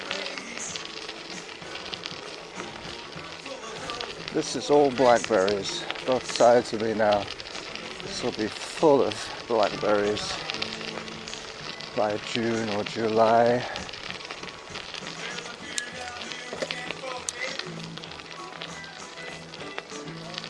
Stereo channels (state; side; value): identical; both; correlation 1.00